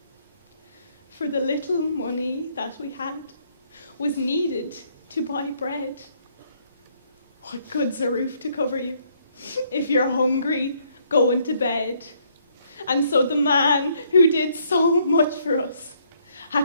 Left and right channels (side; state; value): both; inverted; correlation -0.68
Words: For the little money that we had was needed to buy bread. What good's a roof to cover you if you're hungry going to bed? And so the man who did so much for us